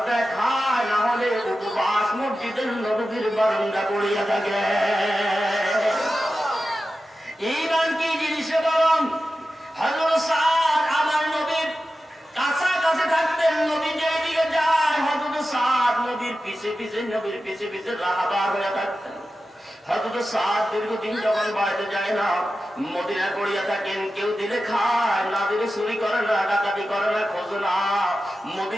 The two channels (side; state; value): both; normal; correlation 0.93